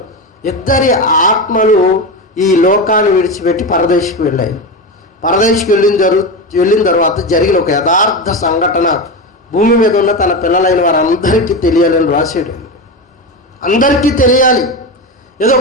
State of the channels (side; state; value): both; normal; correlation 0.19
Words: ఇద్దరి ఆత్మలు ఈ లోకాన్ని విడిచిపెట్టి పరదేశికి వెళ్ళాయి. పరదేశికి వెళ్ళిన తర్వాత జరిగిన ఒక యథార్థ సంఘటన భూమి మీద ఉన్న తన పిల్లలైన వారందరికీ తెలియాలని రాశాడు. అందరికీ తెలియాలి. ఏదో